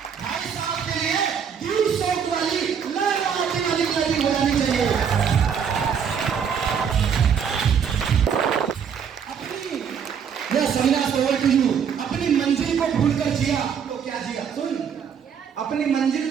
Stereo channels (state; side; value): quieter; left; 7.3 dB